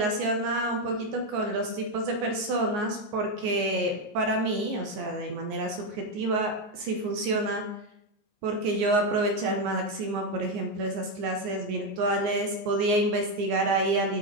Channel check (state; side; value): late; left; 14 ms